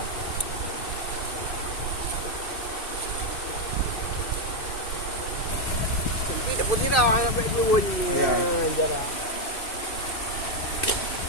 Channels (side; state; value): right; late; 2.5 ms